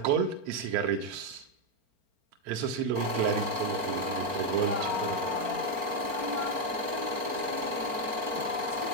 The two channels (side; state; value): left; late; 4.4 ms